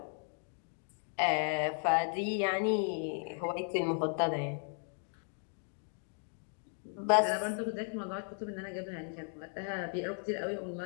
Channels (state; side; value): silent; right; 54 dB below the other